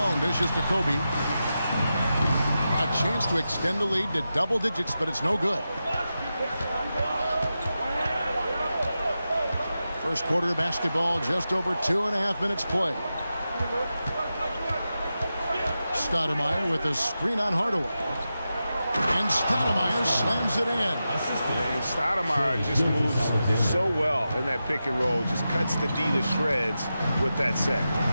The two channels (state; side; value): inverted; both; correlation -0.91